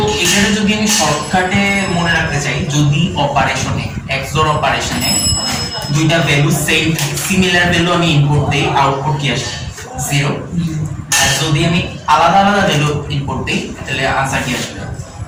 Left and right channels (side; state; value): both; identical; correlation 1.00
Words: এখানে যদি আমি শর্টকাটে মনে রাখতে চাই যদি অপারেশনে XOR অপারেশনে দুইটা ভ্যালু সেম থাকে সিমিলার ভ্যালু আমি ইনপুট দেই আউটপুট কি আসে 0 আর যদি আমি আলাদা আলাদা ভ্যালু ইনপুট দেই তাহলে आंसर কি আসবে